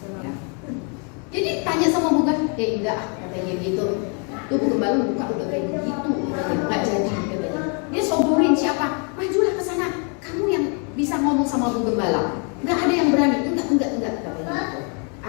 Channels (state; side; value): quieter; right; 38.1 dB